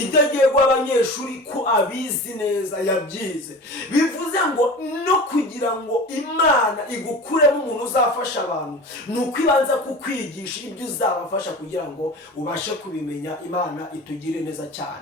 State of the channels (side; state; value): both; normal; correlation 0.35